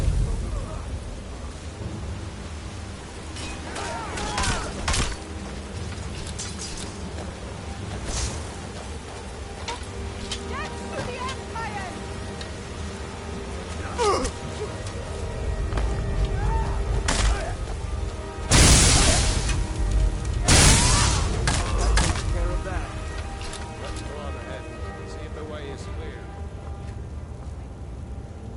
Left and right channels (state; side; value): identical; both; correlation 1.00